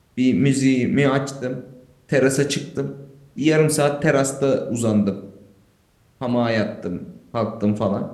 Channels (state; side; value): identical; both; correlation 1.00